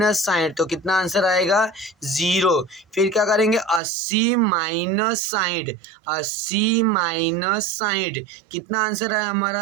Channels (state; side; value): drops out; left; at 3.8 s